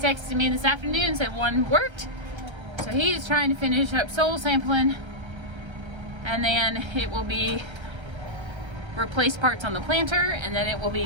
me this afternoon and said one worked. So he's trying to finish up soil sampling, and then it will be replace parts on the planter, and then it will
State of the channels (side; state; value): left; late; 1.3 ms